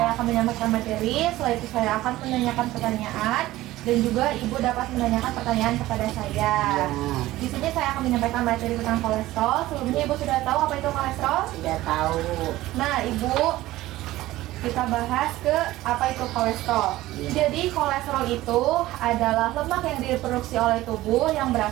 akan menyampaikan materi. Setelah itu saya akan menanyakan pertanyaan dan juga Ibu dapat menanyakan pertanyaan kepada saya. Di sini saya akan menyampaikan materi tentang kolesterol. Sebelumnya Ibu sudah tahu apa itu kolesterol? Sudah tahu. Nah, Ibu, kita bahas ke apa itu kolesterol. Jadi kolesterol itu adalah lemak yang diproduksi oleh tubuh yang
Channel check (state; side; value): quieter; left; 16.6 dB